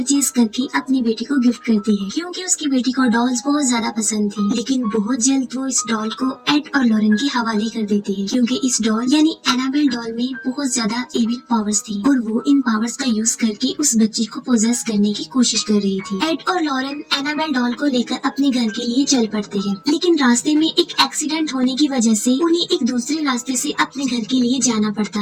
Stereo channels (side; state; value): both; identical; correlation 1.00